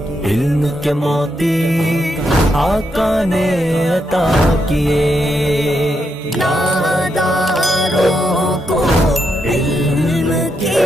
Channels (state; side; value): normal; both; correlation 0.81